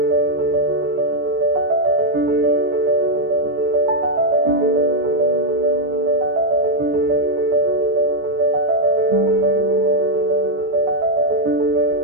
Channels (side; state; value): left; late; 14 ms